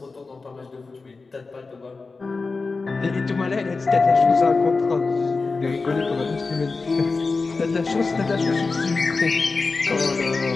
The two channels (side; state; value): right; quieter; 4.0 dB